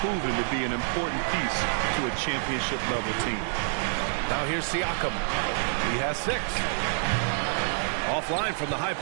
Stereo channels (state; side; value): silent; left; digital silence